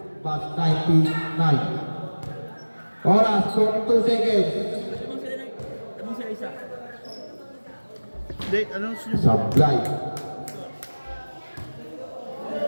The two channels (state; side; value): inverted; both; correlation -1.00